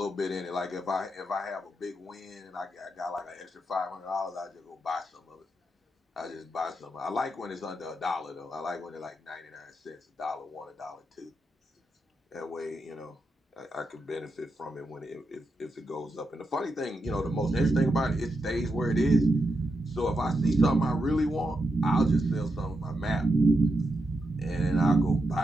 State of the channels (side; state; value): both; normal; correlation 0.85